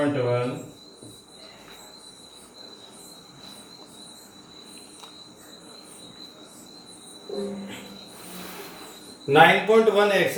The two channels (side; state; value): both; identical; correlation 1.00